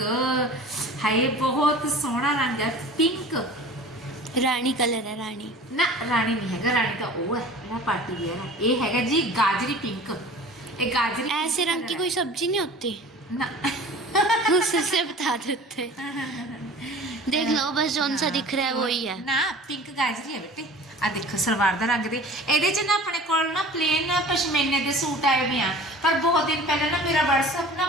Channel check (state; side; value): normal; both; correlation 0.42